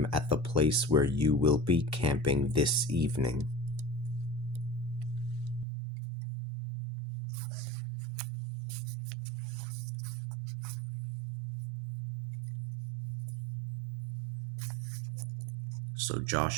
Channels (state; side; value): drops out; left; at 5.7 s